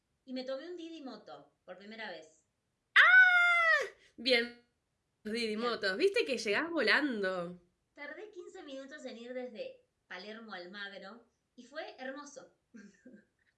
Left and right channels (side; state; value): both; identical; correlation 1.00